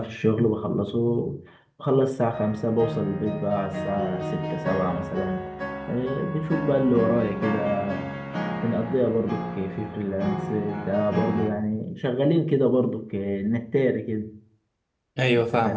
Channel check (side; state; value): both; identical; correlation 1.00